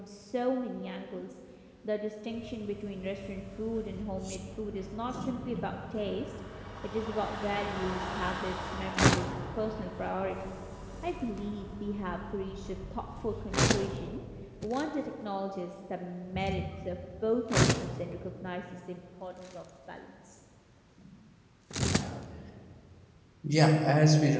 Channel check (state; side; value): identical; both; correlation 1.00